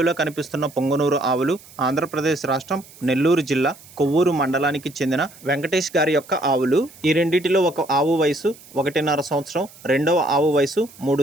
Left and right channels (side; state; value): right; noise; hiss, 22 dB below the sound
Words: కనిపిస్తున్న పొంగనూరు ఆవులు ఆంధ్రప్రదేశ్ రాష్ట్రం నెల్లూరు జిల్లా కొవ్వూరు మండలానికి చెందిన వెంకటేష్ గారి యొక్క ఆవులు. ఈ రెండిటిలో ఒక ఆవు వయసు 1.5 సంవత్సరం, రెండవ ఆవు వయసు